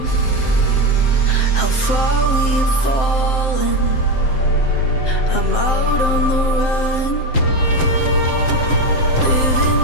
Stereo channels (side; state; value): right; late; 7.7 ms